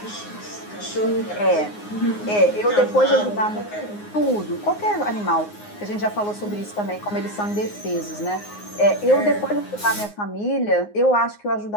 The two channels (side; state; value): right; late; 9.6 ms